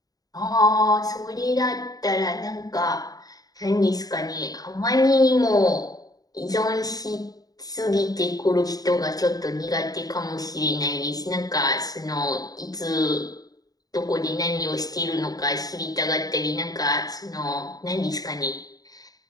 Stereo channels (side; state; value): right; late; 0.18 ms